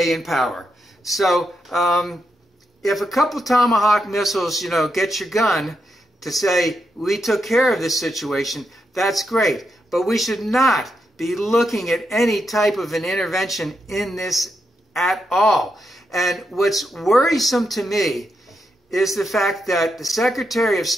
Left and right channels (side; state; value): both; normal; correlation 0.83